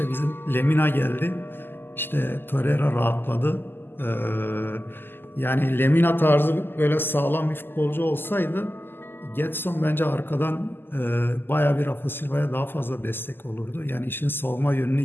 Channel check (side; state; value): right; late; 0.098 ms